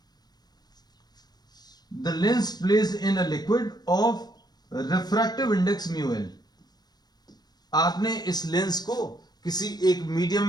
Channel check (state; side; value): late; right; 0.19 ms